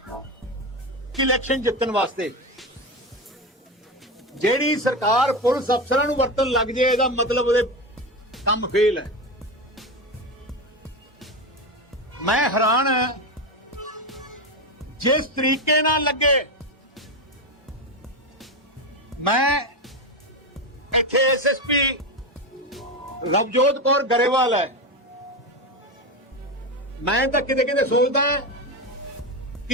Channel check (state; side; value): normal; both; correlation 0.16